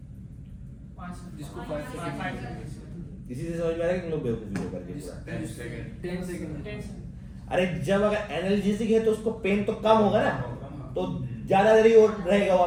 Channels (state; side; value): identical; both; correlation 1.00